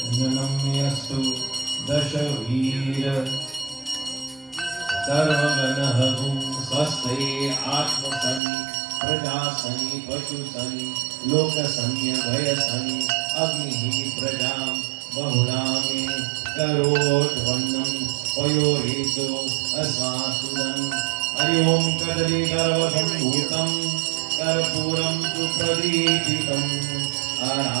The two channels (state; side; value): drops out; left; at 8.4 s